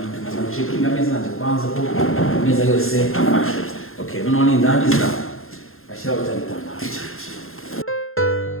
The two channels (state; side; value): late; right; 0.61 ms